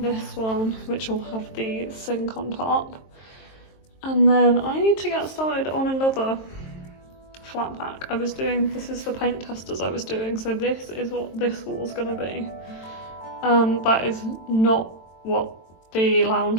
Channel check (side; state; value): right; late; 23 ms